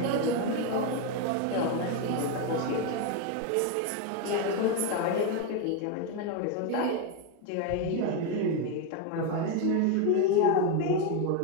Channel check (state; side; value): different; both; correlation 0.02